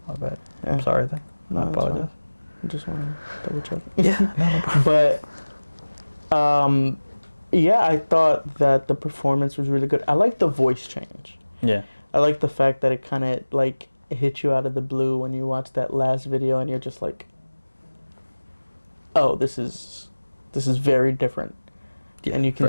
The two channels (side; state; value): both; inverted; correlation -1.00